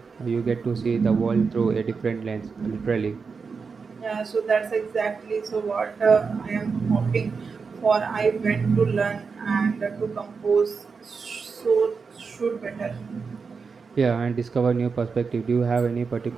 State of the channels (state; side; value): quieter; left; 5.1 dB